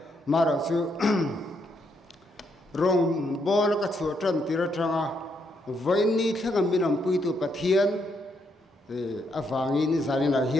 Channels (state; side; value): normal; both; correlation 0.77